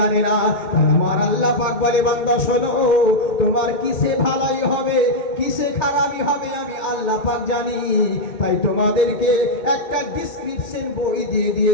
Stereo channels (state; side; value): late; right; 2.1 ms